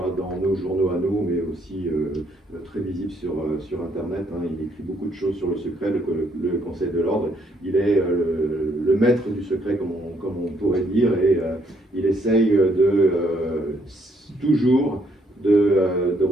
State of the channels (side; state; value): both; normal; correlation 0.70